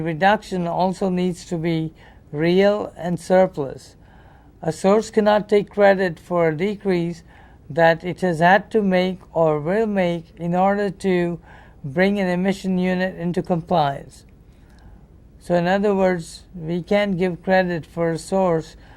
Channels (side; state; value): both; identical; correlation 1.00